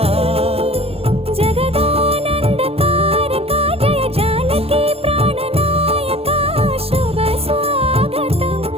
జగదానందకారక జయ జానకి ప్రాణనాయక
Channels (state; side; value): late; left; 0.29 ms